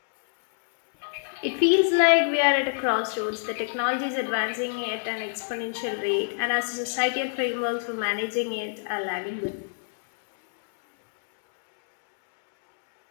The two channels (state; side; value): silent; right; 61 dB below the other